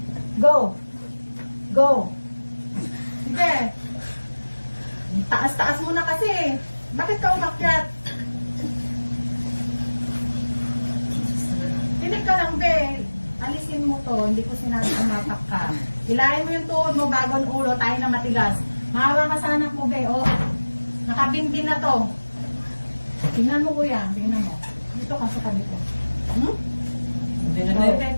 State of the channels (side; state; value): both; inverted; correlation -1.00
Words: Go! Go! Sige. Taas-taas mo na kasi. Bakit ka umakyat? Tinig ka lang, be. Alisin mo to. Hindi ko sinabi umapak ka. Hilahin mo yung tuhod mo bago ang ulo. Tayo na matigas. Mahawa ka sa anak mo, be. Oh. Nakabinbin na to. Tingnan mo, kuya. Tingnan mo. Dito ka sa tabi ko. Hmm? Hindi na, Okay, be.